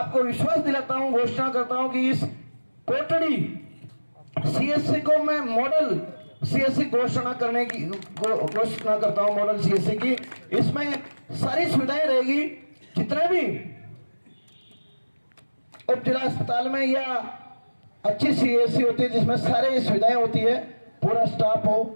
विश्वास दिलाता हूँ, घोषणा करता हूँ कि इस कोटड़ी CSC को मैं मॉडल CSC घोषणा करने की घोषणा करता हूँ, मॉडल CSC की। इसमें सारी सुविधाएं रहेगी, जितने भी उप जिला अस्पताल में या अच्छी CSC होती है जिसमें सारी सुविधाएं होती है, पूरा स्टाफ हो,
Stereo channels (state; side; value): inverted; both; correlation -1.00